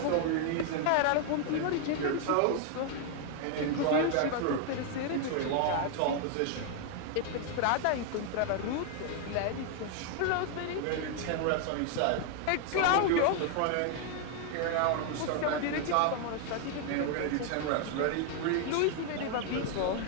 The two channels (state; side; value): different; both; correlation 0.00